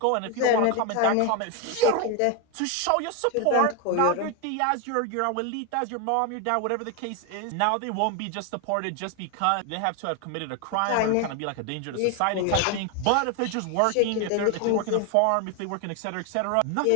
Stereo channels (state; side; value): different; both; correlation 0.01